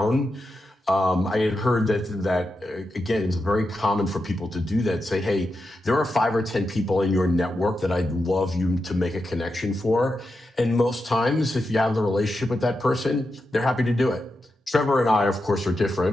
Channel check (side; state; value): both; normal; correlation 0.88